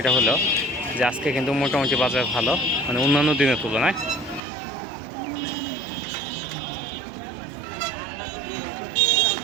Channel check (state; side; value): drops out; left; at 4.4 s